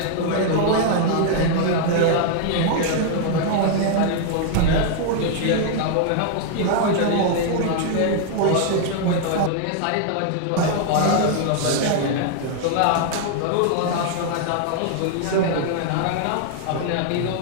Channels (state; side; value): different; both; correlation -0.01